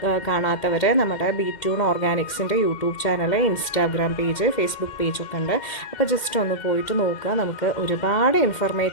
കാണാത്തവർ നമ്മുടെ ബി2 ഓർഗാനിക്സിൻ്റെ YouTube channel, Instagram page, Facebook പേജൊക്കെ ഉണ്ട്. അപ്പോൾ ജസ്റ്റ് ഒന്ന് പോയിട്ട് നോക്കുക. നമുക്ക് ഒരുപാട്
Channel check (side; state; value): right; late; 2.1 ms